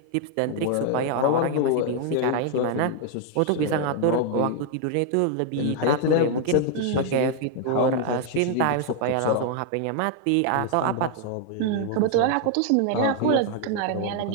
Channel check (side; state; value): both; different; correlation 0.00